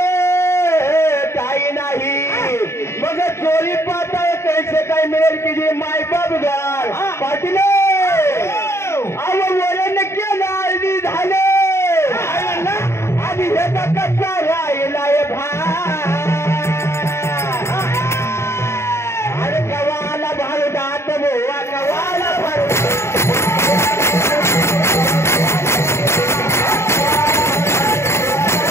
काही नाही मग चोरी पाहता कैसे काय मिळेल की जे मायबाप गार पाटील वरण केलं अर्धी झाले आधी ह्याचा कच्चा राहिलाय अरे कवाला भारुडात बोवा कवाला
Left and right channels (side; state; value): right; late; 0.13 ms